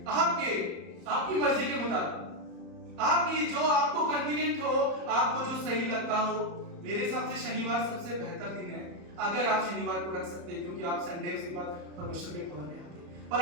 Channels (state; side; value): late; left; 34 ms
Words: आपकी मर्जी के मुताबिक, आपकी जो आपको कन्वीनियंट हो, आपको जो सही लगता हो। मेरे हिसाब से शनिवार सबसे बेहतर दिन है, अगर आप शनिवार को रख सकते हैं, क्योंकि आप संडे उसके बाद परमेश्वर के भवन में आते हैं। पर